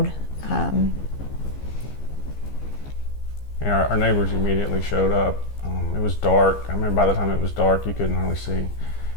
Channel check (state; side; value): late; right; 15 ms